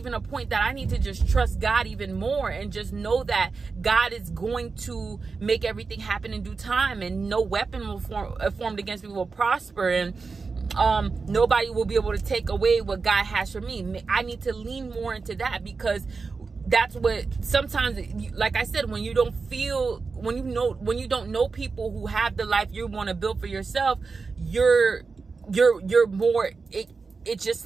a point that I need to just trust God even more, and just know that God is going to make everything happen in due time, and no weapon will formed against me will prosper, and nobody will be able to take away what God has for me. I need to lean more into that, because that's what sometimes, like I said, when you don't know people who have the life you want to build for yourself, you're more, it's just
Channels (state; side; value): quieter; left; 4.5 dB